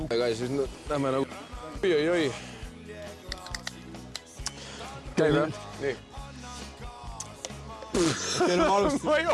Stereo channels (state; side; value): identical; both; correlation 1.00